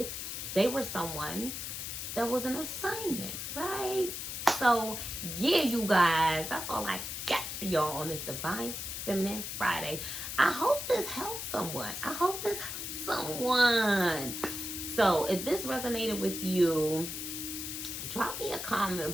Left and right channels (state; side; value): noise; left; hiss, 5 dB below the sound